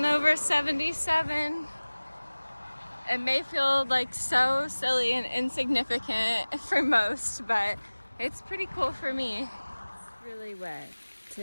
over 77. It may feel like so silly and insignificant for most, but it's pretty cool for me. It's really wet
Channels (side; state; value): both; inverted; correlation -1.00